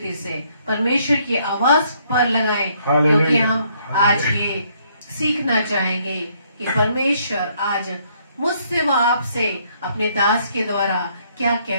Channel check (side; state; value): both; inverted; correlation -0.68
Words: से परमेश्वर की आवाज पर लगाएं, क्योंकि हम आज ये सीखना चाहेंगे कि परमेश्वर आज मुझसे व आपसे अपने दास के द्वारा क्या